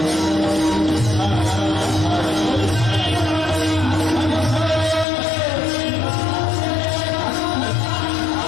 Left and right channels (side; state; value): right; drops out; at 5.1 s